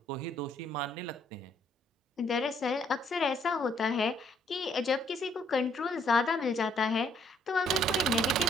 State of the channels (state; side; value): normal; both; correlation 0.67